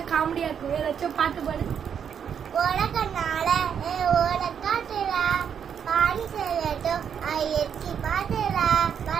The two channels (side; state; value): left; quieter; 7.8 dB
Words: காமெடியா இருக்கு. ஏதாச்சும் பாட்டு பாடு. உலகனால உலகாட்டுறா பாடி செல்லட்டும் ஐயத்தி பாட்டுறா